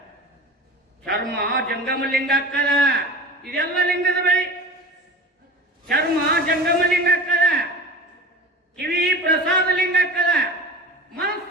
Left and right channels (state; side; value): normal; both; correlation 0.35